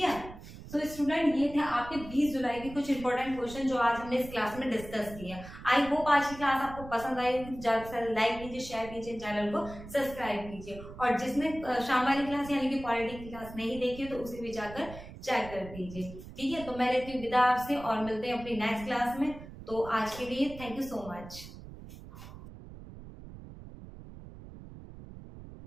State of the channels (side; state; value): right; noise; rumble, 14 dB below the sound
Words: है, तो स्टूडेंट ये थे आपके 20 जुलाई के कुछ इंपॉर्टेंट क्वेश्चन जो आज हमने इस क्लास में डिस्कस किए। आई होप आज की क्लास आपको पसंद आई होगी। ज्यादा से ज्यादा लाइक कीजिए, शेयर कीजिए, चैनल को सब्सक्राइब कीजिए, और जिसने शाम वाली क्लास यानी कि पॉलिटी की क्लास नहीं देखी तो उसे भी जाकर चेक कर दीजिए। ठीक है, तो मैं लेती हूँ विदा आपसे और मिलते हैं अपनी नेक्स्ट क्लास में। तो आज के लिए थैंक यू सो मच।